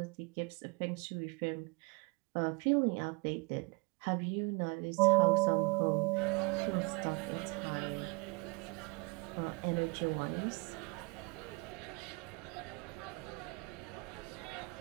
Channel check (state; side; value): quieter; left; 29.2 dB